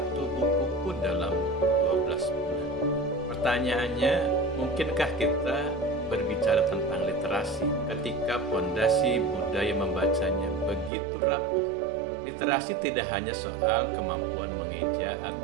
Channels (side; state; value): left; drops out; at 10.9 s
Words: buku pun dalam 12 bulan. Pertanyaannya, mungkinkah kita berbicara tentang literasi ketika pondasi budaya membacanya begitu rapuh? Literasi tidak hanya soal kemampuan mengeja